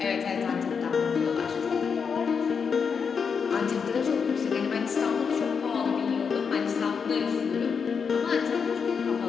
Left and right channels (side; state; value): right; quieter; 6.1 dB